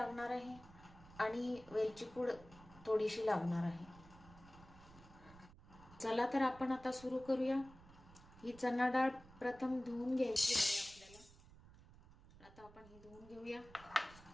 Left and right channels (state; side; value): noise; right; rumble, 21 dB below the sound